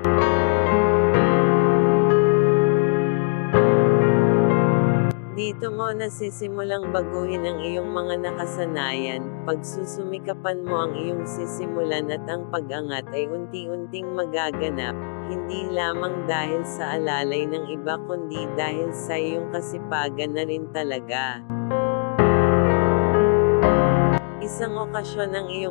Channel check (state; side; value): silent; right; 57 dB below the other